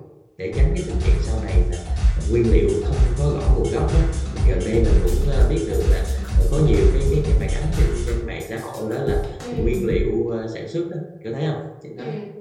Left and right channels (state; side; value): identical; both; correlation 1.00